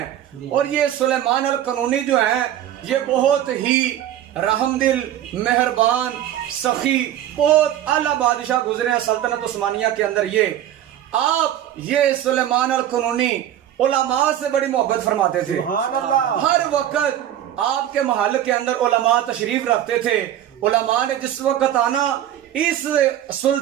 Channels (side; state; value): left; quieter; 11.6 dB